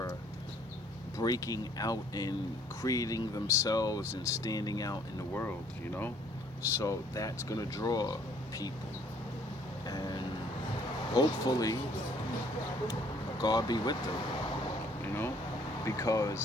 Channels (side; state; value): both; normal; correlation 0.61